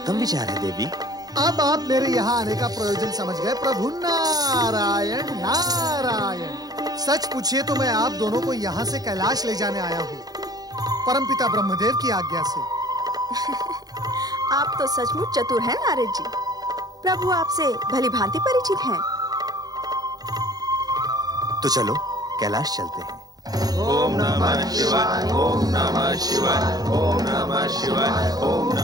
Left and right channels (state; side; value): late; left; 0.19 ms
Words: विचार है देवी। अब आप मेरे यहाँ आने का प्रयोजन समझ गए प्रभु। नारायण नारायण। सच पूछिए तो मैं आप दोनों को यहाँ से कैलाश ले जाने आया हूँ, परमपिता ब्रह्मदेव की आज्ञा से। आप तो सचमुच चतुर हैं नारद जी। प्रभु आपसे भली भांति परिचित हैं। तो चलो कैलाश चलते हैं। ओम नमः शिवाय, ओम नमः शिवाय, ओम नमः शिवाय, ओम